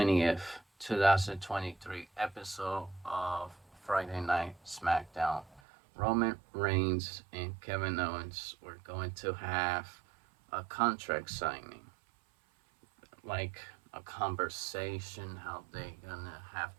2023, episode of Friday Night SmackDown, Roman Reigns and Kevin Owens were going to have a contract signing, like a conversation how they gonna have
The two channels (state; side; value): drops out; left; at 5.6 s